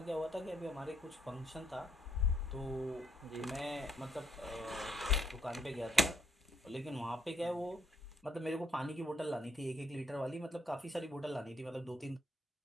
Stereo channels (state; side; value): normal; both; correlation 0.72